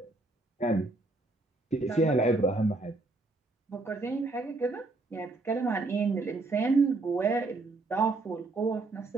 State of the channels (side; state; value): left; quieter; 3.2 dB